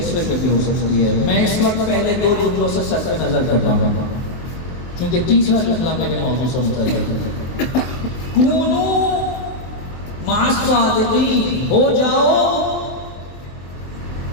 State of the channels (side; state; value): right; late; 24 ms